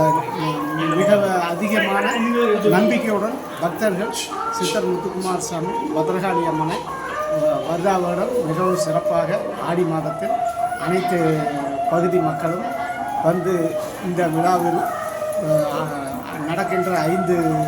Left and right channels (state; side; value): identical; both; correlation 1.00